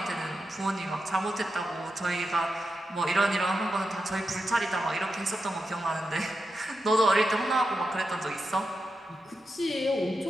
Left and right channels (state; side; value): normal; both; correlation 0.88